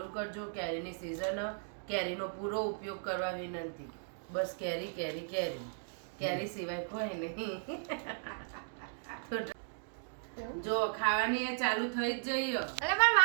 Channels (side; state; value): left; silent; digital silence